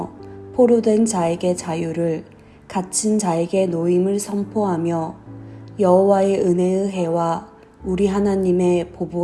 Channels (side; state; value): both; identical; correlation 1.00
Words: 포로된 자에게 자유를, 갇힌 자에게 노임을 선포하며 여호와의 은혜의 해와 우리 하나님의